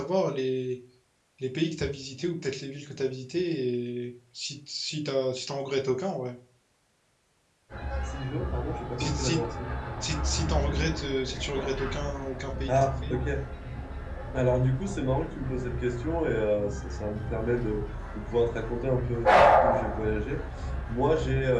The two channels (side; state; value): both; identical; correlation 1.00